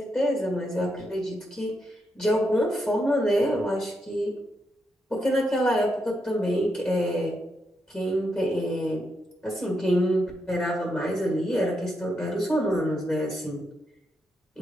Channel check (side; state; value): both; normal; correlation 0.82